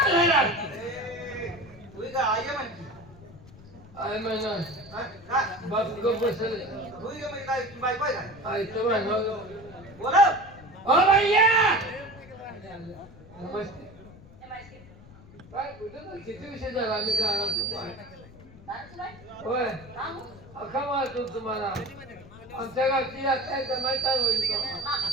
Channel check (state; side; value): noise; left; rumble, 20 dB below the sound